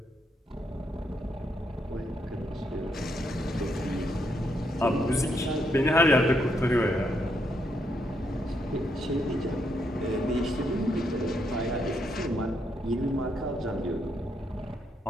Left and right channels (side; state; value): both; normal; correlation 0.77